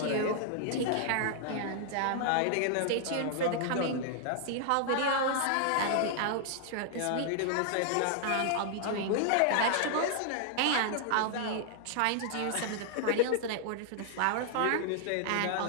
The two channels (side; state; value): both; different; correlation -0.01